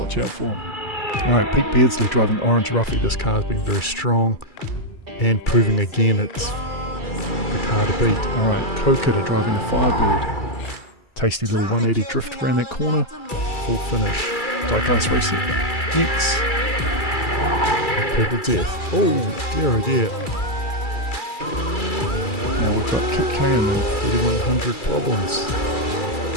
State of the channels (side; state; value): right; late; 2.3 ms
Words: out for. Alright, Pete Beardsley driving Orange Ruffy. This car's been very strong and proving again it's the car to beat. Alright, Kokida driving the Firebird. Tasty little 180 drift around that corner. Full finish. Diecast Racer X. Purple Death. Oh dear. Now we've got Kit Kayam, 3100 Problems.